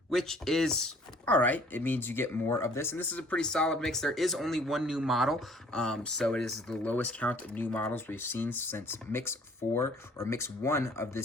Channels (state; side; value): normal; both; correlation 0.56